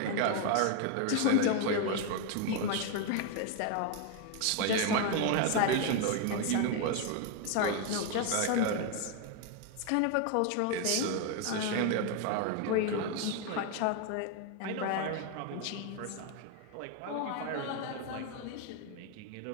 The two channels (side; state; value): both; different; correlation 0.01